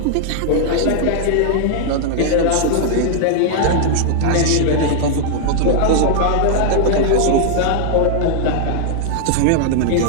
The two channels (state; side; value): different; both; correlation -0.01